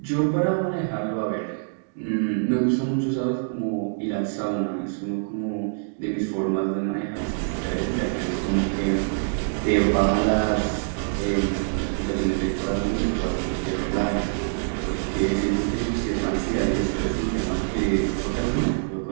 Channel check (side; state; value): left; silent; digital silence